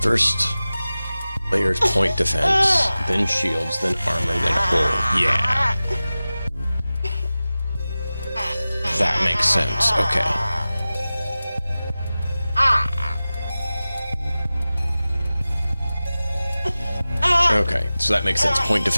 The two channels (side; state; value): both; inverted; correlation -0.96